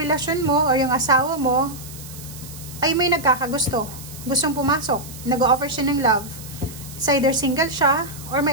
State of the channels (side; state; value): right; noise; hiss, 15 dB below the sound